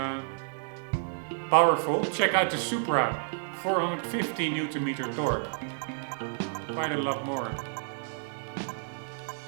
powerful. Check out the Supra, 450 Nm torque. Quite a lot more.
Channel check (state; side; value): silent; left; digital silence